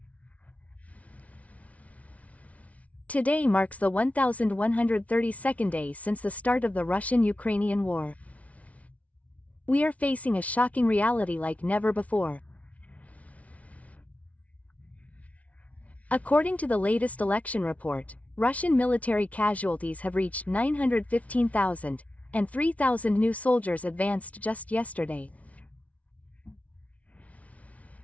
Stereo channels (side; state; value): right; late; 0.067 ms